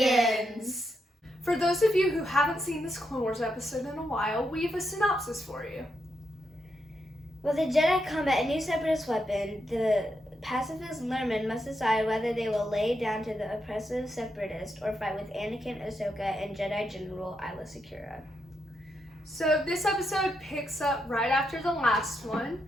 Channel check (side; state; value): both; normal; correlation 0.83